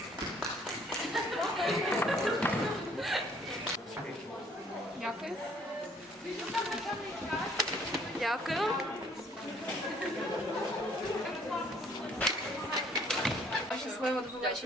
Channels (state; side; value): normal; both; correlation 0.61